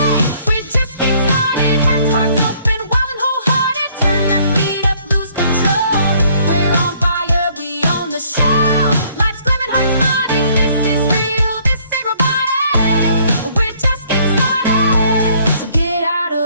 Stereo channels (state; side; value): inverted; both; correlation -0.62